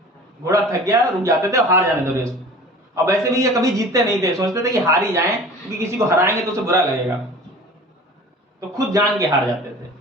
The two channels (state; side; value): normal; both; correlation 0.42